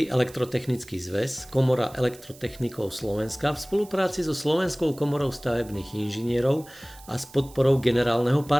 elektrotechnický zväz, Komora elektrotechnikov Slovenska v spolupráci so Slovenskou komorou stavebných inžinierov a s podporou generálneho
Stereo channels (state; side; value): noise; right; hiss, 21 dB below the sound